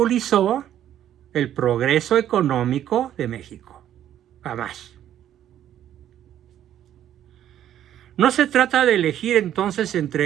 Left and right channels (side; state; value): left; quieter; 11.1 dB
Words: el progreso económico de México. Jamás. No se trata de elegir entonces